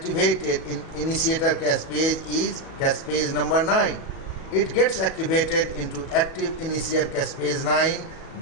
in initiator caspase is caspase number 9. It gets activated into active initiator caspase 9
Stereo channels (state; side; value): late; right; 37 ms